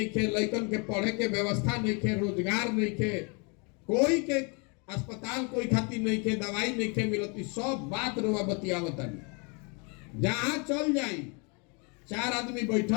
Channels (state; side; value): quieter; right; 33.6 dB